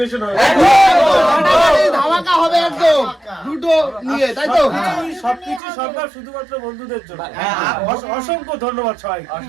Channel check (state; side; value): drops out; left; at 5.6 s